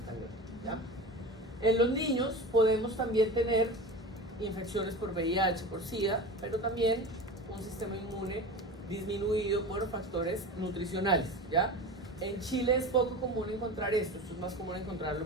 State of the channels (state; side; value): normal; both; correlation 0.30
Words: tan graves, ¿ya? En los niños podemos también tener infecciones por VIH, por SIDA, pero también un sistema inmune disminuido por factores nutricionales, ¿ya? En Chile es poco común encontrar esto es más común encontrarlo,